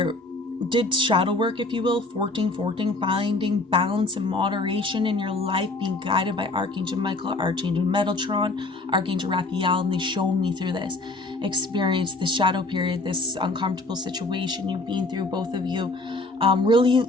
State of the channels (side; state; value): right; quieter; 3.0 dB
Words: did shadow work, if you will, 14, finding balance and moderation in your life, being guided by Archangel Michael, Archangel Metatron, Archangel Raphael, and they shown me through this experience, this shadow period, this uncomfortable situation you've been through, both of you, really